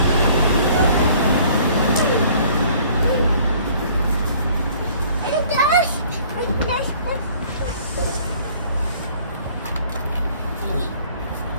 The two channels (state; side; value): inverted; both; correlation -0.55